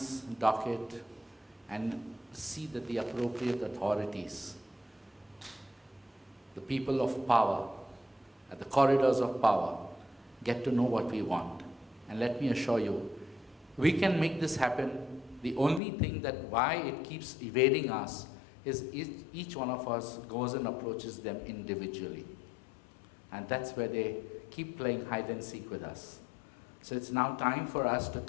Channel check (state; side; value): drops out; right; at 15.8 s